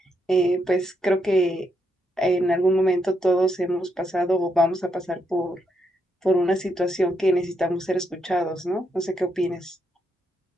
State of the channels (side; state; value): both; normal; correlation 0.79